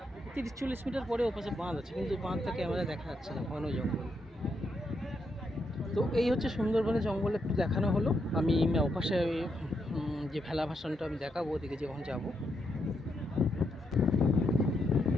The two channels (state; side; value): normal; both; correlation 0.80